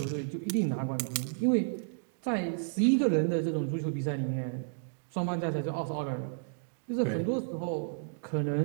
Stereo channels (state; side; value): silent; left; digital silence